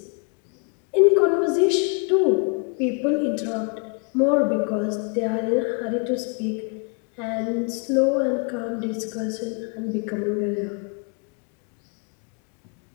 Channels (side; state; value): right; quieter; 36.7 dB